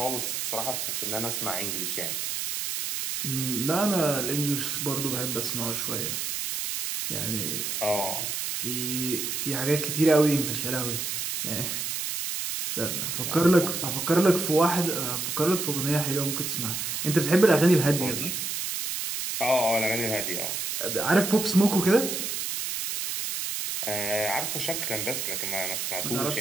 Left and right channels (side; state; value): right; noise; hiss, 2 dB below the sound